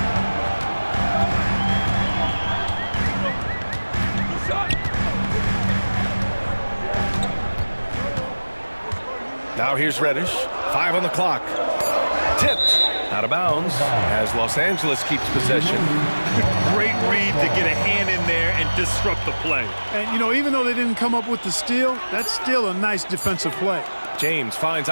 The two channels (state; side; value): inverted; both; correlation -1.00